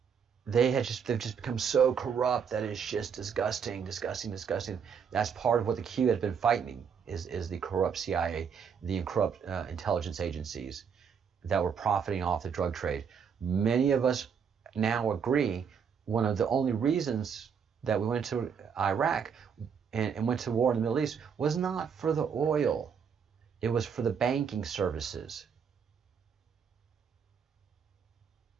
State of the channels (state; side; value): quieter; left; 6.9 dB